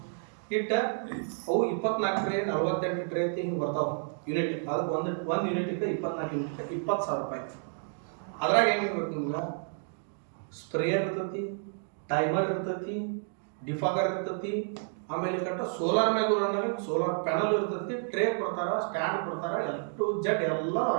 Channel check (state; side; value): silent; left; 58 dB below the other